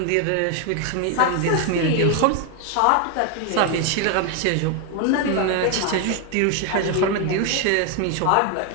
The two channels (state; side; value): different; both; correlation 0.01